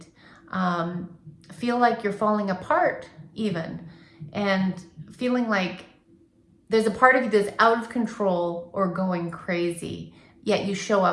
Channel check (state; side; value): identical; both; correlation 1.00